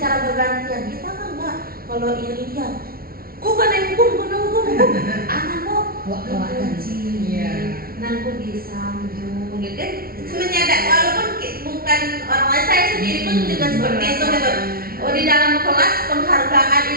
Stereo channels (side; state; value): left; late; 0.43 ms